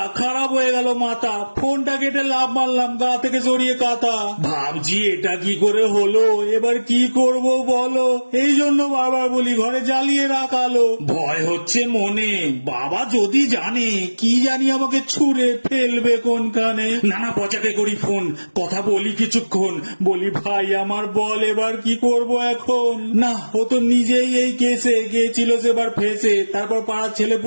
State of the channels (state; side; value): inverted; both; correlation -1.00